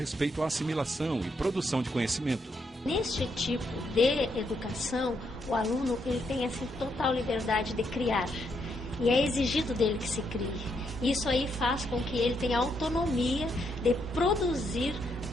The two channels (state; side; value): normal; both; correlation 0.77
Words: à assimilação e produção de conhecimento. Neste tipo de educação, o aluno ele tem assim, total liberdade de criar. E é exigido dele que se crie. Isso aí faz com que ele tenha autonomia de produzir